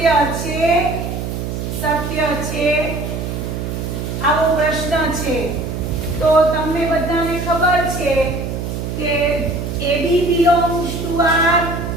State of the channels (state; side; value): noise; right; hum, 4 dB below the sound